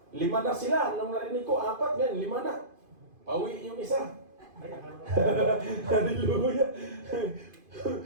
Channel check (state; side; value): late; left; 2.5 ms